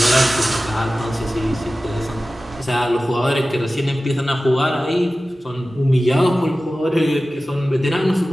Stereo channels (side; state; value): both; normal; correlation 0.96